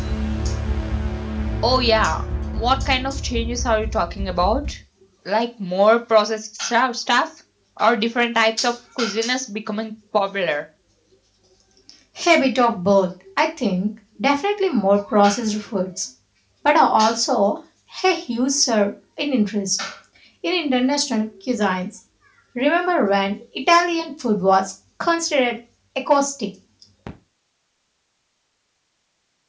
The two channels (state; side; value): identical; both; correlation 1.00